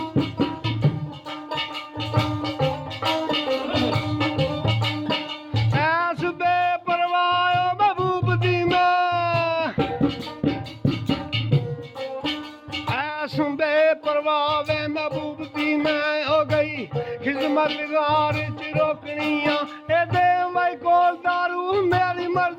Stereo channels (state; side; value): identical; both; correlation 1.00